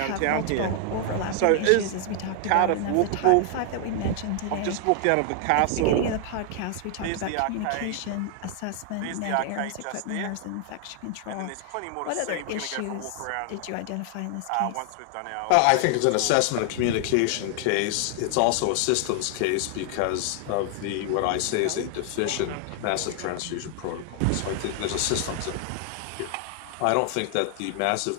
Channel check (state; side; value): different; both; correlation 0.00